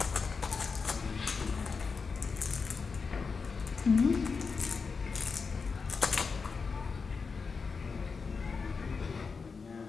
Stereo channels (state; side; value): quieter; right; 5.0 dB